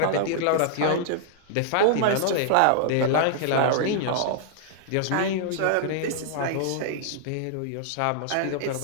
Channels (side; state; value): both; different; correlation -0.01